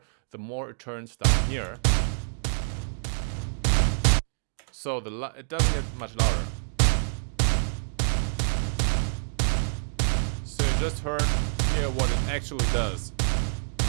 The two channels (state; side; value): silent; left; 60 dB below the other